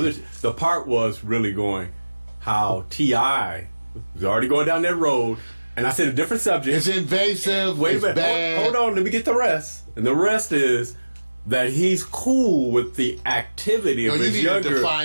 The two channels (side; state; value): both; inverted; correlation -1.00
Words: part was really going how T.I. was already going down that road, and I said a different subject. It's invasive. Wait a minute. Bad. Hold on. Let me get the rest. And the rest is that he's cool with the activity of his younger. You need to